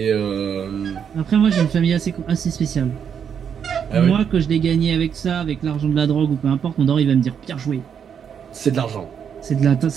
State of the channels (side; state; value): left; quieter; 7.7 dB